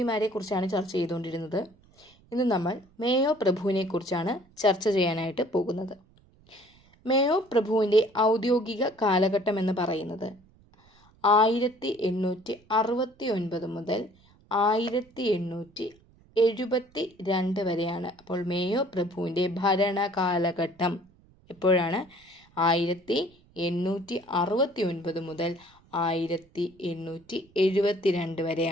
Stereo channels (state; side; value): noise; right; rumble, 30 dB below the sound